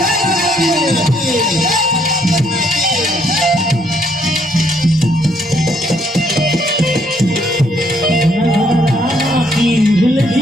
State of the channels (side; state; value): both; normal; correlation 0.69